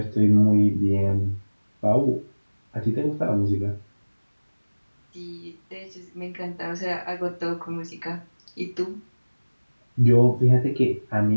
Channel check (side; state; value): both; inverted; correlation -1.00